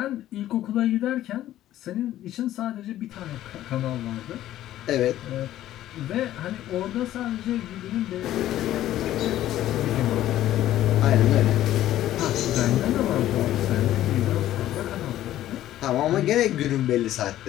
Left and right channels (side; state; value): right; quieter; 13.3 dB